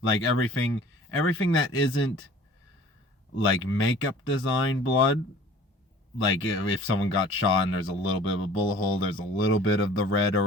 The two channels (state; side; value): normal; both; correlation 0.48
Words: like everything that isn't like makeup design blood, like if someone got shot and there's a little bit of a bullet hole, there's a little bit of the red